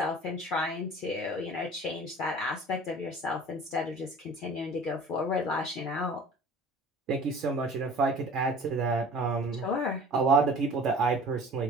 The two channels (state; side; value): normal; both; correlation 0.44